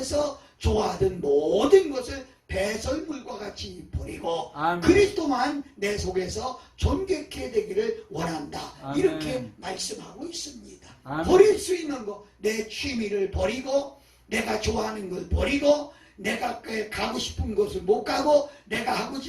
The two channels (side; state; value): both; identical; correlation 1.00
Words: 좋아하던 모든 것을 배설물과 같이 버리고 아멘. 그리스도만 내 속에서 존귀케 되기를 원한다. 아멘. 이렇게 말씀하고 있습니다. 아멘. 버릴 수 있는 거, 내 취미를 버리고 내가 좋아하는 걸 버리고 내가 가고 싶은 곳을 못 가고 내가 하고